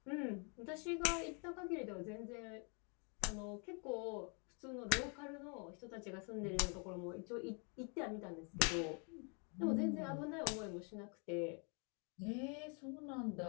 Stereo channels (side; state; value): right; quieter; 37.8 dB